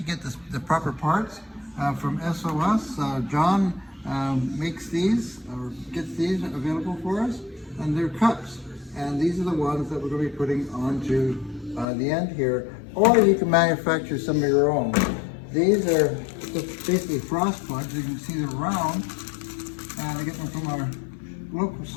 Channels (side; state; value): right; drops out; at 11.9 s